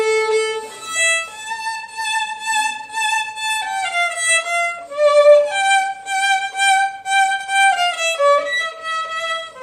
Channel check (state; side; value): identical; both; correlation 1.00